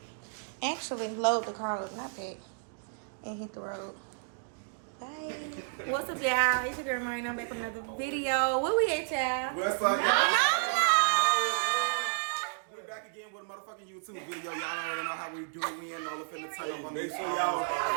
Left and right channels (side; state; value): left; silent; digital silence